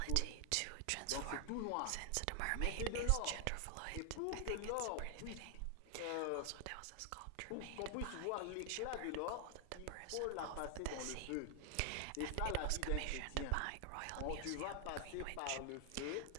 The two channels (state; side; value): different; both; correlation 0.00